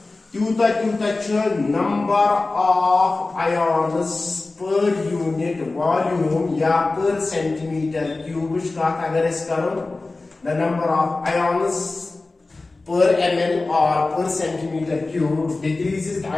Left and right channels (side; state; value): right; quieter; 3.4 dB